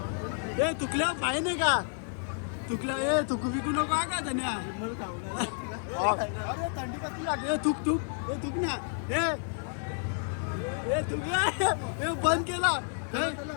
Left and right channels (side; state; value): right; silent; 57 dB below the other